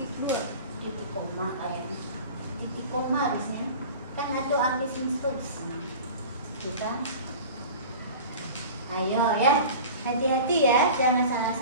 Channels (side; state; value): both; inverted; correlation -0.37